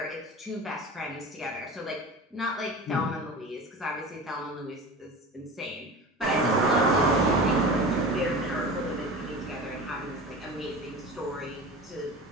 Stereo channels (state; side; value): normal; both; correlation 0.33